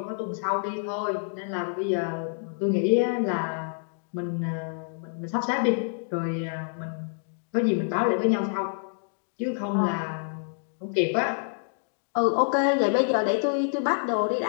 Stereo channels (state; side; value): silent; right; digital silence